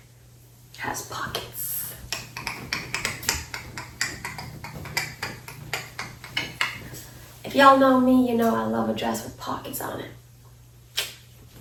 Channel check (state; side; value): identical; both; correlation 1.00